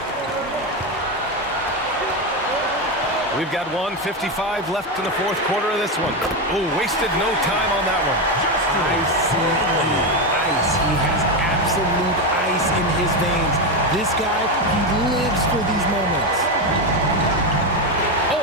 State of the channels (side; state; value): both; normal; correlation 0.12